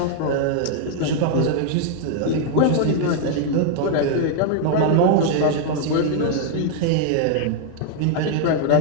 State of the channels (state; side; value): different; both; correlation 0.00